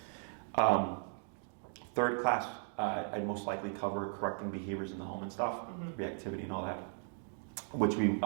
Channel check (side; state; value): left; silent; 53 dB below the other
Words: Third class, I'd most likely cover correcting behaviors in the home and stuff, reactivity and all that, which